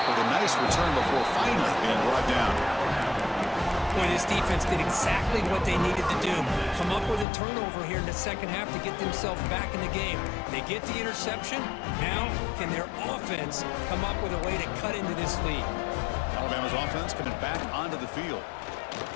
with a nice return before finally being brought down. Boy, this defense did exactly what they needed to do. Come up with a turnover here in the second half to get themselves back in the game. They get the interception. Now, can their offense come up with a way to cut into this lead? Alabama's offense coming back onto the field.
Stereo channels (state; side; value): drops out; right; at 7.2 s